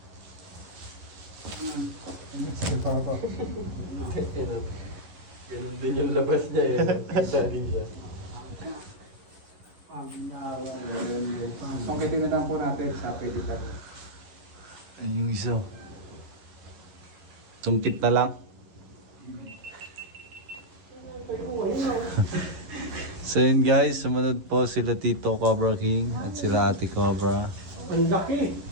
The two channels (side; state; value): left; late; 11 ms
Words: Sige pa ako. Ganun din yung labas niya eh. Kita din siya. Sungkitin na lang po natin sa pedikat. Ayun yung isa. Tungkit na lang. So yun guys, sumunod po sila Tito Cobra King at sila Ate Cobra. Ang laki!